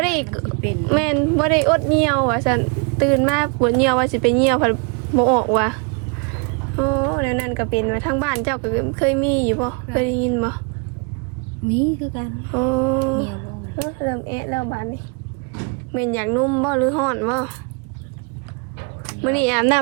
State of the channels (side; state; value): left; quieter; 34.1 dB